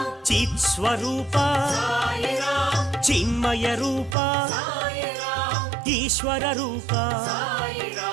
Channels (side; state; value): left; drops out; at 4.2 s